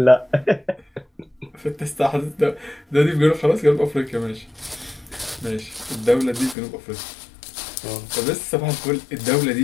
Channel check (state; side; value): drops out; right; at 6.6 s